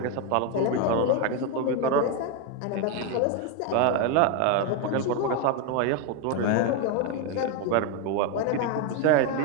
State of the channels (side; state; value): both; different; correlation 0.02